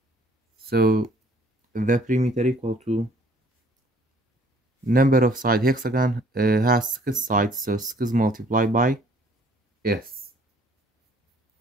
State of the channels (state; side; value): normal; both; correlation 0.58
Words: So the perimeter equal to number of side hexagon has 6 sides, so 6 multiplied by s.